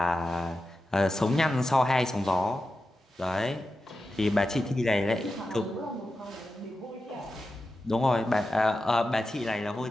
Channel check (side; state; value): both; normal; correlation 0.91